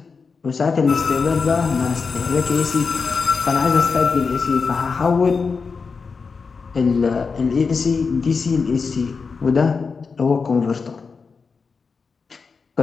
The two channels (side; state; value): right; quieter; 5.0 dB